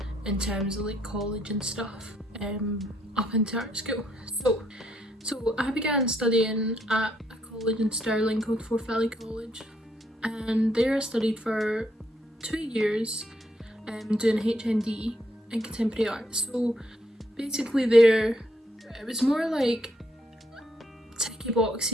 in terms of like college and stuff, up into art school. So I began studying at a college in Stirling called Forth Valley College, and there I studied for 2 years doing HND in contemporary art. So basically there, it was more like ticky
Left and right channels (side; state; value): both; normal; correlation 0.74